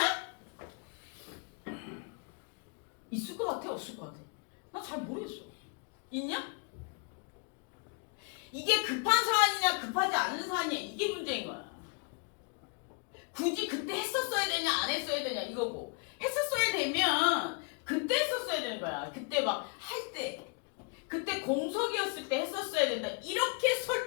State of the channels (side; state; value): right; quieter; 35.5 dB